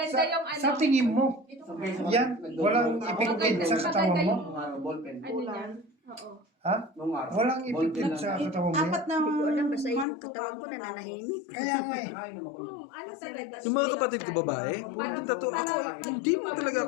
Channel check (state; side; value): drops out; right; at 10.1 s